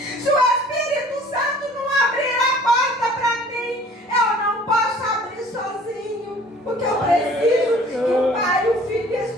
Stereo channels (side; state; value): both; normal; correlation 0.51